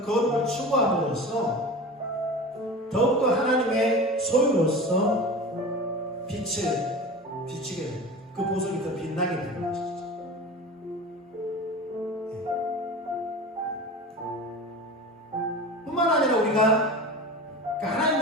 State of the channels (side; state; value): both; normal; correlation 0.33